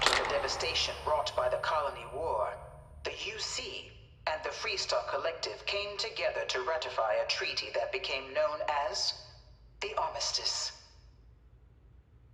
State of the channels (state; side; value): identical; both; correlation 1.00